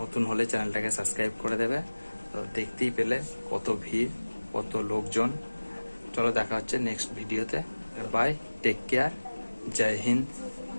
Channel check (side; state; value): both; inverted; correlation -1.00